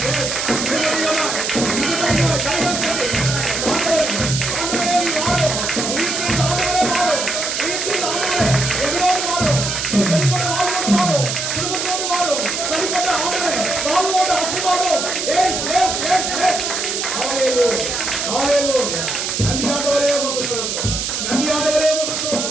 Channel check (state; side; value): noise; right; hiss, 2 dB below the sound